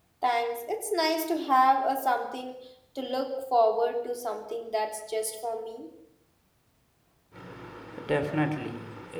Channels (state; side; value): identical; both; correlation 1.00